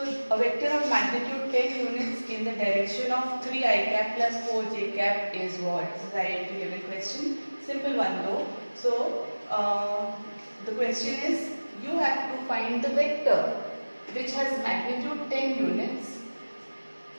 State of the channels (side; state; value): both; inverted; correlation -1.00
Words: a vector of magnitude 10 units in the direction of 3 I cap plus 4 j cap is what? This is identity given question. Simple one though. So the question is, you have to find the vector which has magnitude 10 units